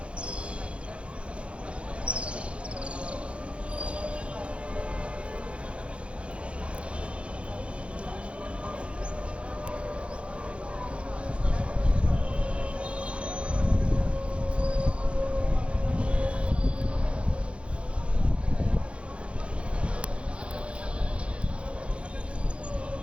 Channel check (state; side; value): late; left; 0.060 ms